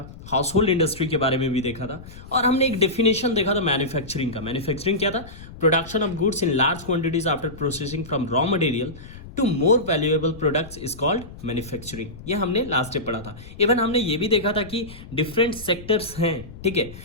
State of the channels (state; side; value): noise; left; rumble, 16 dB below the sound